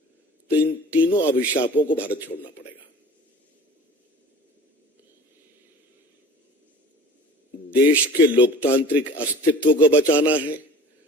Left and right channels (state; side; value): normal; both; correlation 0.43